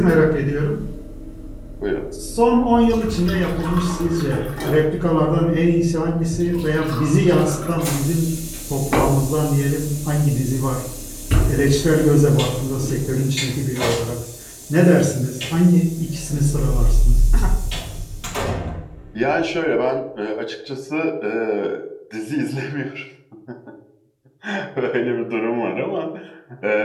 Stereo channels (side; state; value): both; identical; correlation 1.00